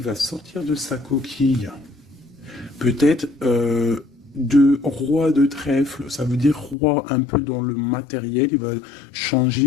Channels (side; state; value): right; drops out; at 6.8 s